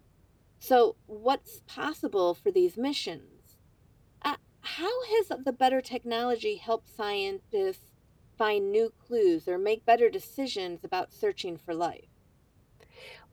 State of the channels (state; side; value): identical; both; correlation 1.00